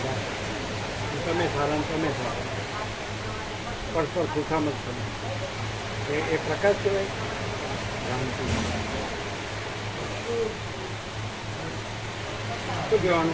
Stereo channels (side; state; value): both; identical; correlation 1.00